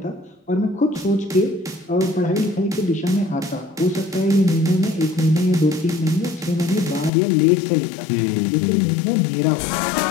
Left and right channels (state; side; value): drops out; right; at 7.1 s